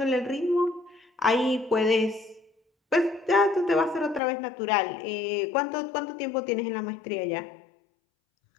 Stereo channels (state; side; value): drops out; right; at 4.2 s